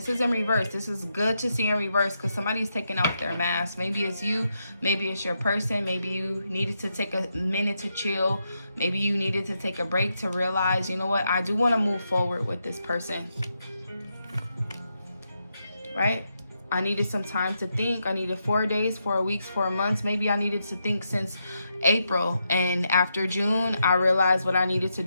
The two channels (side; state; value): both; inverted; correlation -0.83